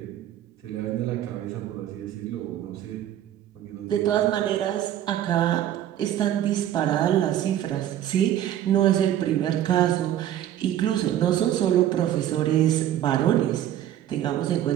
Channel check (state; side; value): quieter; left; 11.7 dB